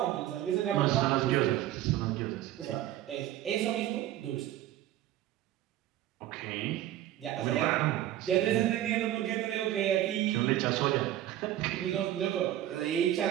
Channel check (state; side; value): quieter; left; 13.1 dB